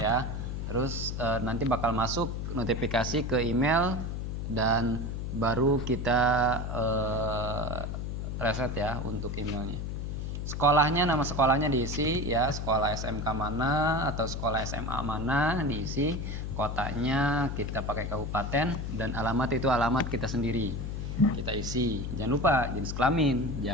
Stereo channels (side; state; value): left; noise; hum, 4 dB below the sound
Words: Terus nanti bakal masuk notifikasi ke email dan baru kita reset ya untuk emailnya. Sekolahnya, nama sekolahnya diisi ya, sekolah SMK mana atau sekolah SMA mana diisi, kotanya kita pakai kabupaten, dan alamat itu alamat kita sendiri kita isi. Jangan lupa jenis kelamin,